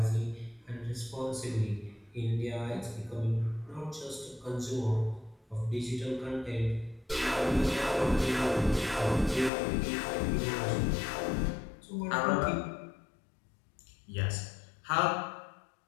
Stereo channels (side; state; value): right; drops out; at 9.5 s